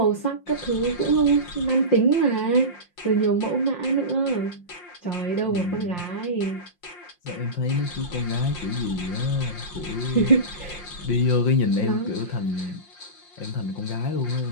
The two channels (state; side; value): late; right; 5.7 ms